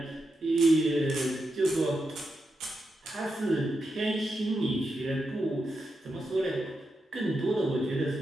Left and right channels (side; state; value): both; normal; correlation 0.86